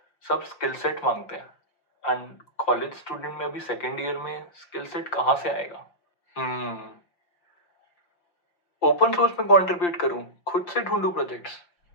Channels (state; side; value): late; right; 5.8 ms